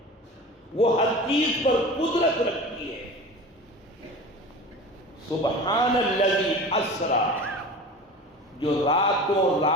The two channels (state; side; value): normal; both; correlation 0.35